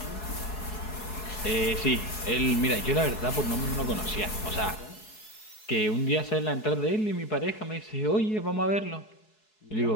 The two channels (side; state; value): right; late; 4.7 ms